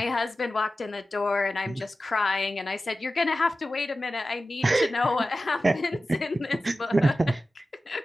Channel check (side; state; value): both; normal; correlation 0.94